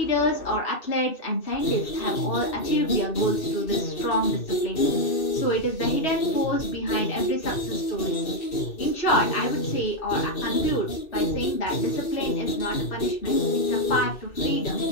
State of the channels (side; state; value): right; late; 2.6 ms